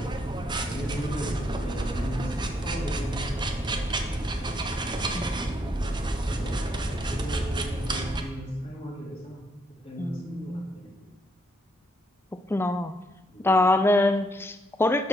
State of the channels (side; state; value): both; normal; correlation 0.74